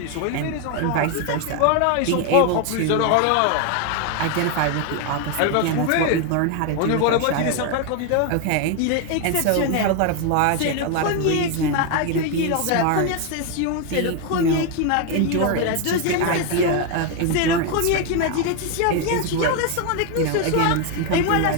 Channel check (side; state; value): both; different; correlation 0.01